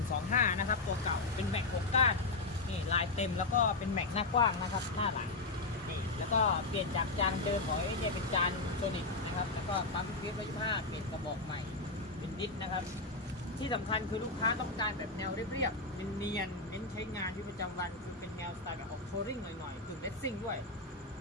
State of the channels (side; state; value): right; quieter; 3.5 dB